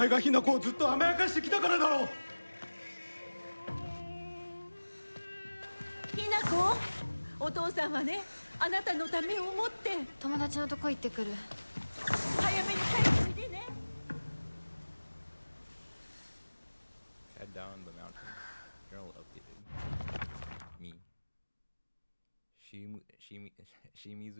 がひなこをずっと甘やかしてきたからだろう。ひなこ、お父さんはね、あなたのためを思って友達のとこ行ってくる。早めに帰っておいでね。Head down the mountain. Journal updated. Me.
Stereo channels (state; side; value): inverted; both; correlation -1.00